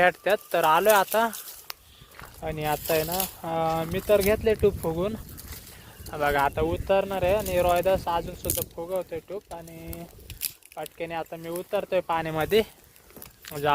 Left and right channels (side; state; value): both; identical; correlation 1.00